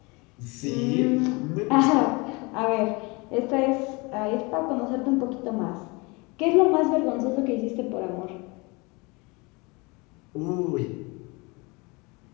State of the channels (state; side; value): quieter; right; 27.1 dB